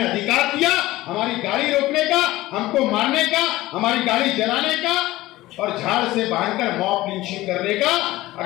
अधिकार दिया हमारी गाड़ी रोकने का, हमको मारने का, हमारी गाड़ी जलाने का और झाड़ से बांधकर मॉब लिंचिंग करने का?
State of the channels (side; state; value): right; quieter; 17.5 dB